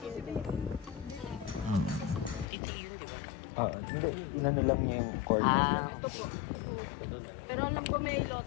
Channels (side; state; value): right; drops out; at 2.5 s